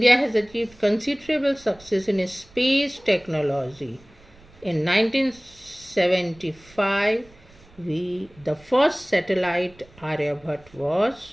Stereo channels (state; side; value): noise; right; rumble, 26 dB below the sound